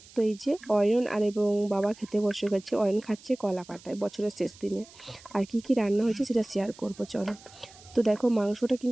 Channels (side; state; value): right; noise; hiss, 22 dB below the sound